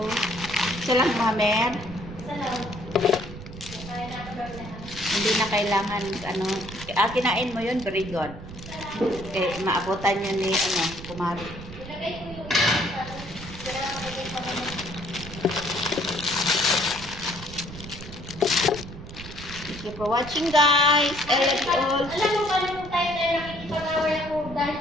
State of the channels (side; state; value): right; noise; rumble, 13 dB below the sound